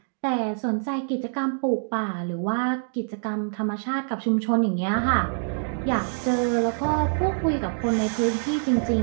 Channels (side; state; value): left; silent; digital silence